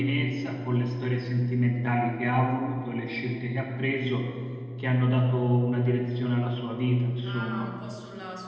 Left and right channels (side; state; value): both; identical; correlation 1.00